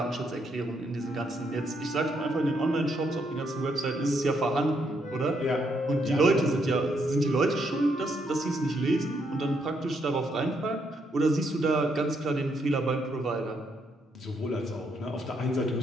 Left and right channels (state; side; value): normal; both; correlation 0.76